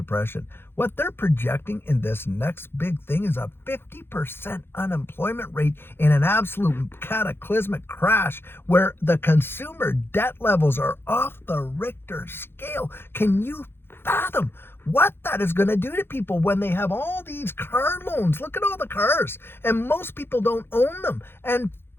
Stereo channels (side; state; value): right; late; 0.11 ms